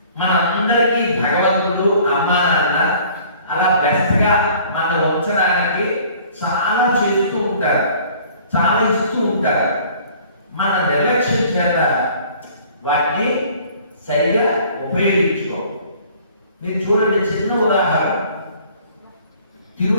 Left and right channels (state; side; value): inverted; both; correlation -0.53